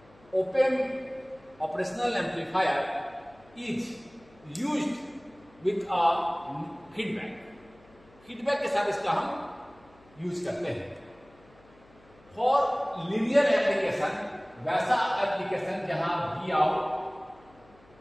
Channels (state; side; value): noise; left; hum, 28 dB below the sound